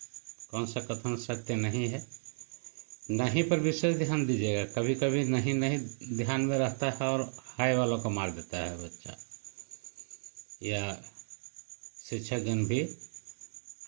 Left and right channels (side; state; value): left; silent; digital silence